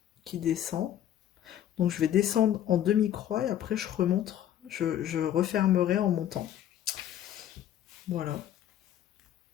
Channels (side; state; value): right; quieter; 11.2 dB